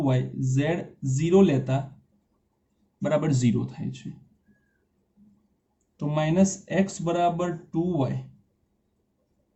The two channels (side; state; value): both; identical; correlation 1.00